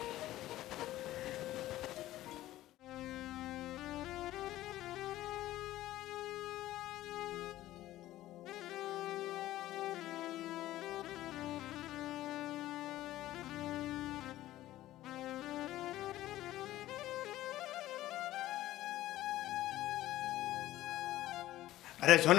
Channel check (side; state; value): right; quieter; 15.1 dB